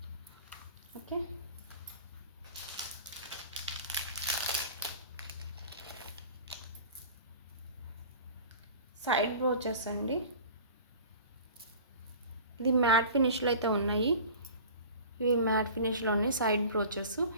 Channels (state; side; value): inverted; both; correlation -0.40